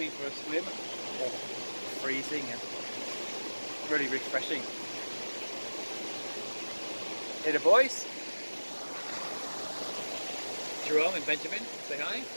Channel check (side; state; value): both; inverted; correlation -1.00